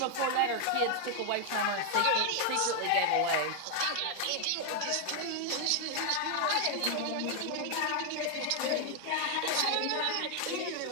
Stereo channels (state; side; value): different; both; correlation 0.00